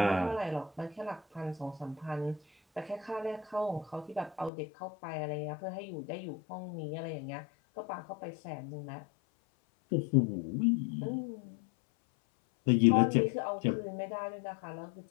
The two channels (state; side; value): drops out; right; at 4.5 s